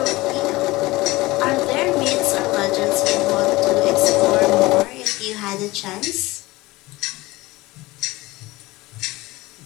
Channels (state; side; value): quieter; right; 20.5 dB